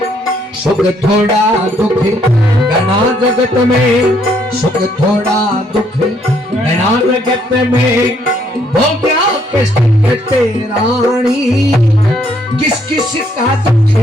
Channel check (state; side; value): normal; both; correlation 0.69